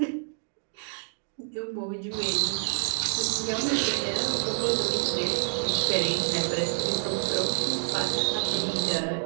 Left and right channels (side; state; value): left; silent; digital silence